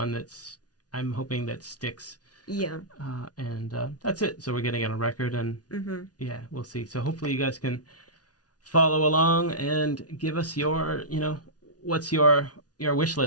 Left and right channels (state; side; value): late; right; 0.69 ms